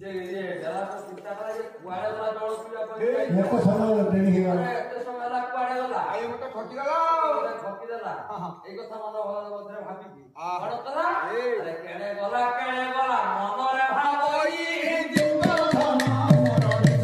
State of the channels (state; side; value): identical; both; correlation 1.00